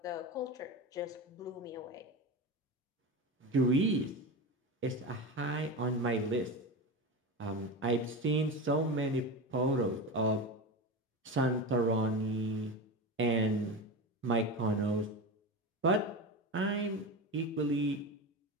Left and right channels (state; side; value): normal; both; correlation 0.23